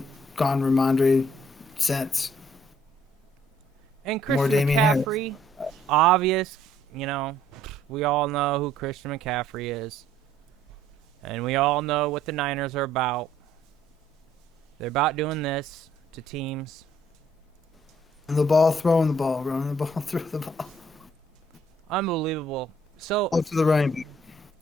gone Ramondre since. And Christian McCaffrey, obvious, we all know who Christian McCaffrey is. And we all know what the Niners are about. They're about doing this to teams. The ball, throwing the ball, running the ball, throw the ball. Unbelievable. So, to the right.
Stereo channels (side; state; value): both; normal; correlation 0.63